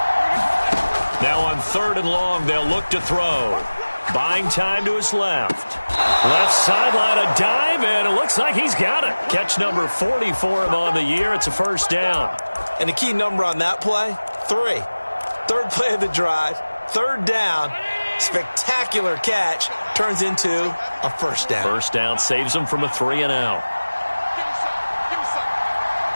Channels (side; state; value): both; inverted; correlation -1.00